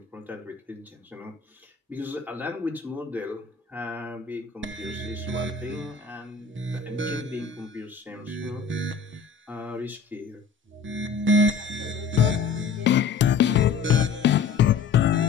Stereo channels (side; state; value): right; quieter; 5.6 dB